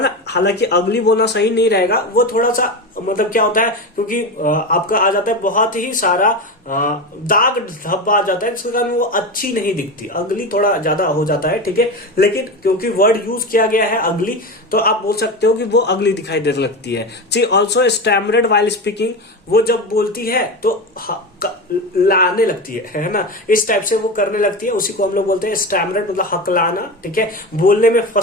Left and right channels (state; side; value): normal; both; correlation 0.22